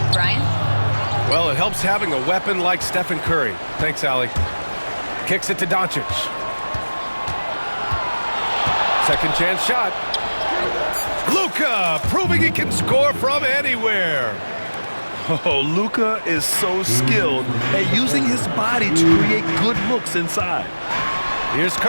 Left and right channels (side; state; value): both; inverted; correlation -1.00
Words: Brian? Well, it helps having a weapon like Stephen Curry. Thanks, Allie. Kicks it to Doncic. Second chance shot. Luka proving he can score from anywhere. Oh, Luka is so skilled at using his body to create good looks inside. Here's